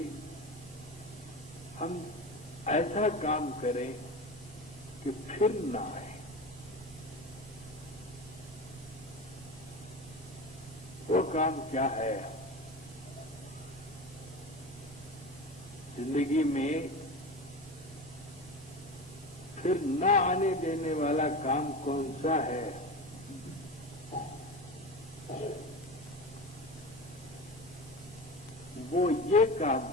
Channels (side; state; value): both; normal; correlation 0.28